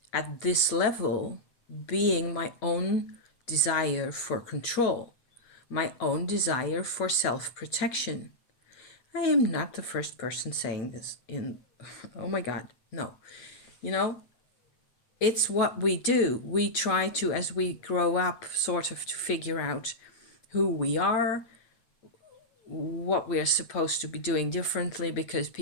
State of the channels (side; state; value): right; late; 8.4 ms